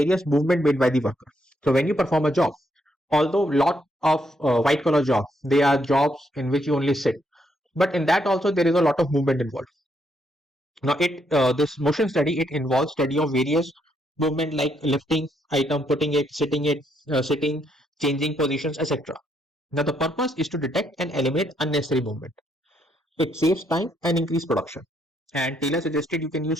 movement made by the worker. So, when you perform a job, although lot of white collar jobs, they are jobs in which you only sit, but in that also there is a lot of movement involved. Now, this motion study, it involves study of various movement like lifting item, putting it, sitting, changing positions, etc. Now, the purpose is to detect and eliminate unnecessary movement. It saves time and increase production. And Taylor suggested you can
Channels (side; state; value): both; normal; correlation 0.75